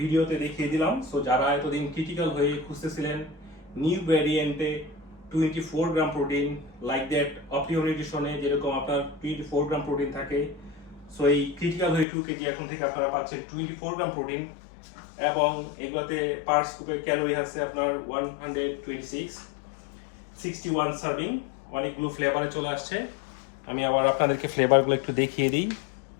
দেখিয়ে দিলাম। সো যারা এতদিন ক্রিটিক্যাল হয়ে খুঁজতেছিলেন নিউ ভ্যারিয়েন্টে 24 গ্রাম প্রোটিন লাইক দ্যাট অপটিও নিউট্রিশনে যেরকম আপনার 24 গ্রাম প্রোটিন থাকে, সো এই ক্রিটিক্যাল হয়ে 2 কেজি এখন থেকে আপনারা পাচ্ছেন 24 গ্রাম প্রোটিন, এবং এগুলোতে পার স্কুপের ক্যালোরি আছে আপনার 126, 61 সার্ভিং। অনেকগুলো ফ্লেভারে চলে আসছে। আমি আবার আপনাদেরকে ফ্লেভারগুলো একটু দেখিয়ে দিই,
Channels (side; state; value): right; drops out; at 12.1 s